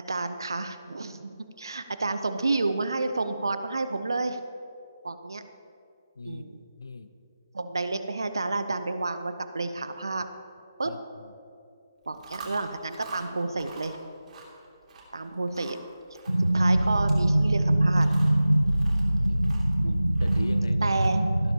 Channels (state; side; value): inverted; both; correlation -0.95